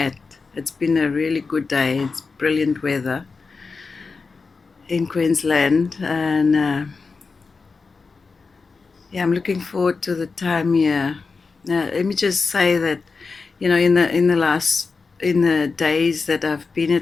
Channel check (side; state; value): right; quieter; 4.5 dB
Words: It's been a really good day. It's brilliant weather in Queensland, and yeah, I'm looking forward to the time here. Let me just say that, in the days that I've been